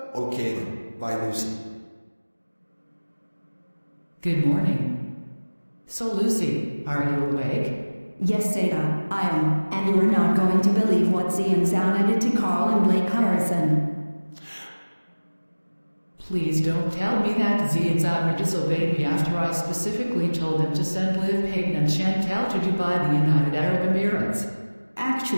Okay then, bye Lucy. Good morning. So Lucy, are you awake? Yes, Zeta, I am, and you are not going to believe what Zeta and Zounna did to Carl and Blake Harrison. Please don't tell me that Zeta and Zounna disobeyed me after I specifically told them to send Liv Payton and Chantel to Dubai, the United Arab Emirates.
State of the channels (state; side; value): inverted; both; correlation -1.00